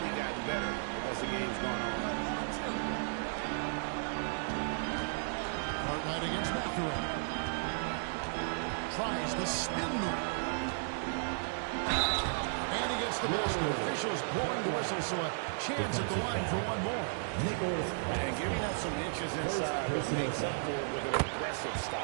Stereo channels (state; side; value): silent; left; digital silence